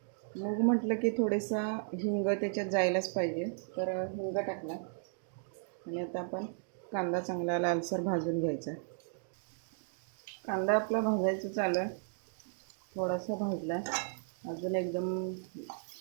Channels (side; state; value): left; silent; digital silence